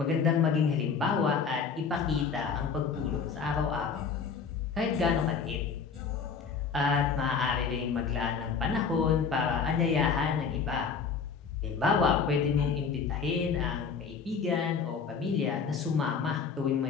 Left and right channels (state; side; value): quieter; right; 5.8 dB